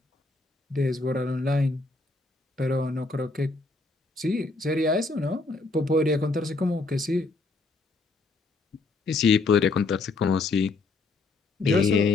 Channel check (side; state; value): right; quieter; 3.6 dB